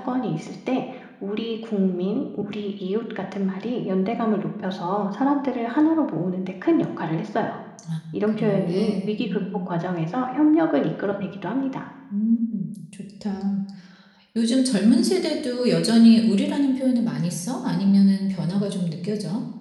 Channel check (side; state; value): both; identical; correlation 1.00